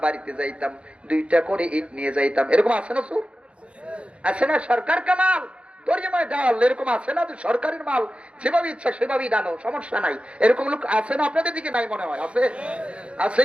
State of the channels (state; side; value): late; left; 0.060 ms